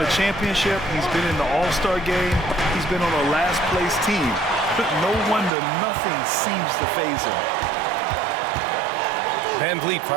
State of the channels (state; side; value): drops out; left; at 5.5 s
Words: a championship. He's been in the All-Star game. He's been on a last-place team. No wonder nothing seems to faze him. Van Vliet